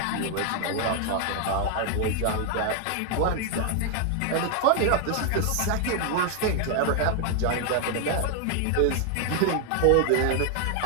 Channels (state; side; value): different; both; correlation 0.00